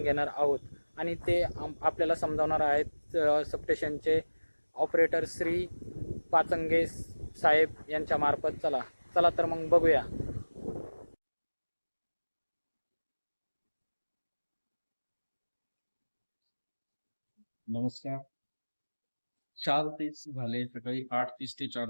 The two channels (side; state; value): both; inverted; correlation -1.00